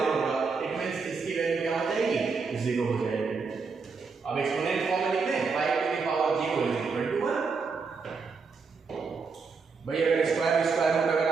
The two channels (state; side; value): quieter; left; 4.9 dB